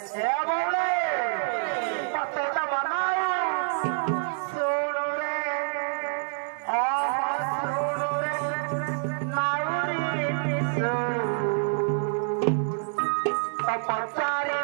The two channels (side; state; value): left; silent; digital silence